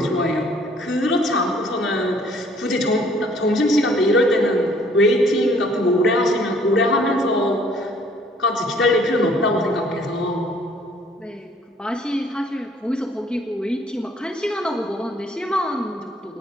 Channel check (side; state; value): both; normal; correlation 0.60